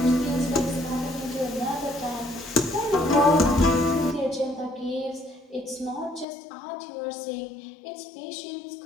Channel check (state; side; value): drops out; right; at 6.2 s